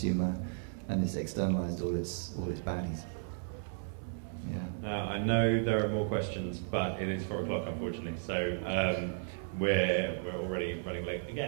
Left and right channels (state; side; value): silent; left; 55 dB below the other